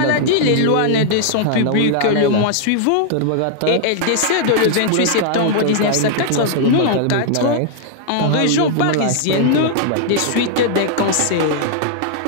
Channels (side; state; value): both; different; correlation -0.01